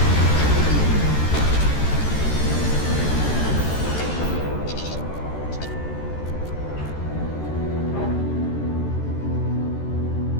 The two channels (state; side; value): late; right; 13 ms